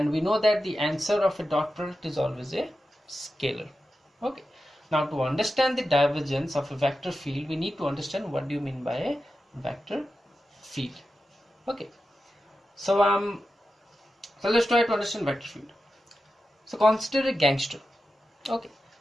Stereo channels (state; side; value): normal; both; correlation 0.91